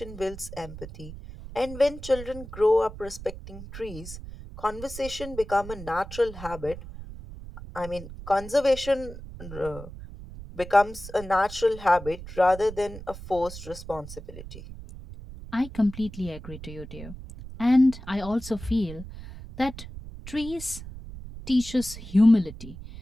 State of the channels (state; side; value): noise; right; rumble, 13 dB below the sound